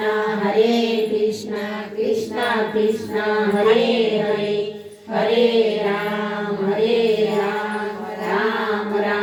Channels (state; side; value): identical; both; correlation 1.00